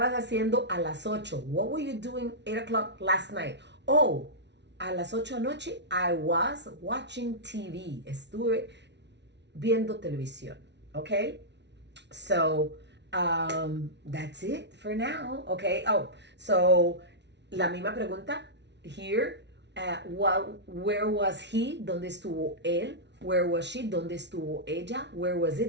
haciendo a las 8? What were you doing 8 o'clock last night? Oh, a las 8 anoche, I was watching TV. Estuve viendo televisión, okay? So, that's it for now, okay? Oh, so, la misma pregunta here. Where was he? ¿Dónde estuvo él? Where was she? ¿Dónde estuvo ella? Where was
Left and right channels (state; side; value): late; left; 0.51 ms